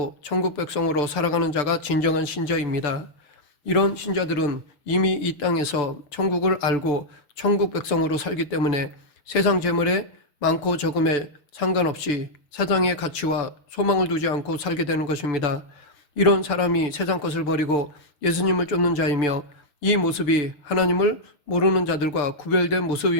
천국 백성으로 살아가는 자가 진정한 신자입니다. 이런 신자들은 이미 이 땅에서 천국을 알고 천국 백성으로 살기 때문에 세상 재물에 많고 적음에 상관없이 세상의 가치와 소망을 두지 않고 살게 되는 것입니다. 이런 사람이 세상 것을 버리고 예수님을 쫓는 자이며 이 모습이 하나님을 모르는 자들과 구별된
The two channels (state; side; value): late; right; 6.8 ms